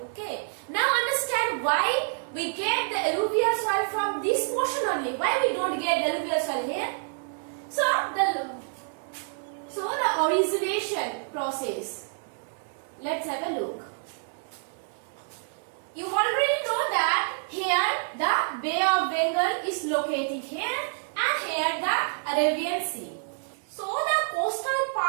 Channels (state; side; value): silent; left; 60 dB below the other